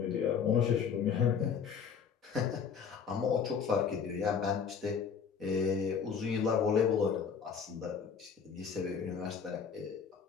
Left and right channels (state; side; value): quieter; right; 6.6 dB